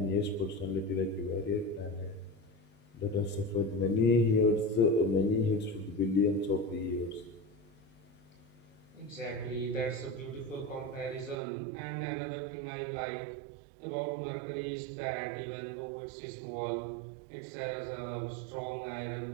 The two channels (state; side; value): drops out; left; at 11.4 s